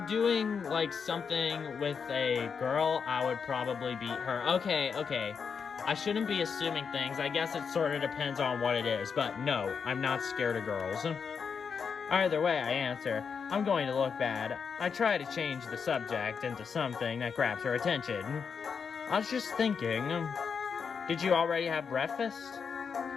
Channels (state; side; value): quieter; right; 6.2 dB